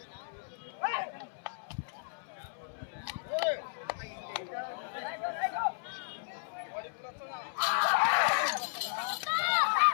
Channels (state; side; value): silent; right; 55 dB below the other